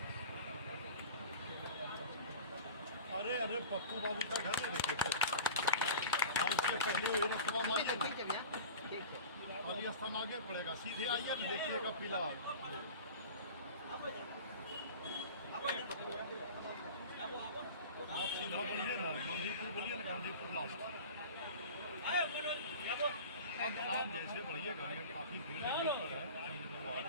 अरे अरे पप्पू बाबू का घर है देखिए उसके पहले वही रस्तवा मारिए ना काली स्थान आगे पड़ेगा, सीधे आइए ना देखिएगा पीला आप सीधा बढ़िए ना गांधीपुर बोलिए ना गांधीपुर लास्ट आप जैसे बढ़िए गाड़ियाँ काफ़ी भीड़ है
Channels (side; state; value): both; inverted; correlation -0.37